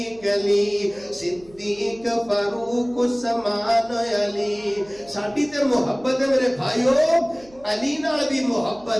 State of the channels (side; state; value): right; noise; hum, 25 dB below the sound